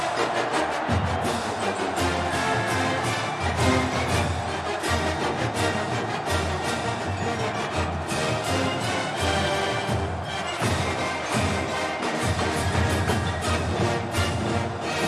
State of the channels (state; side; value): identical; both; correlation 1.00